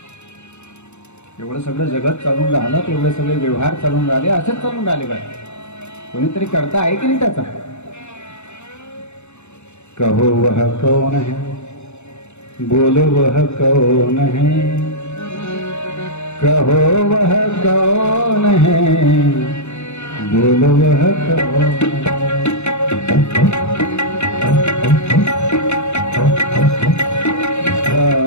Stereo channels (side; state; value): right; late; 0.82 ms